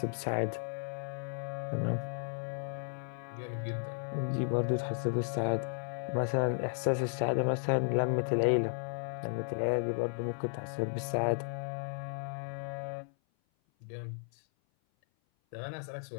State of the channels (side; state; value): right; silent; 55 dB below the other